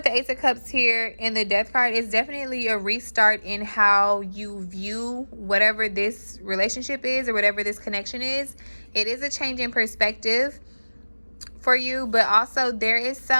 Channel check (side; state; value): both; inverted; correlation -1.00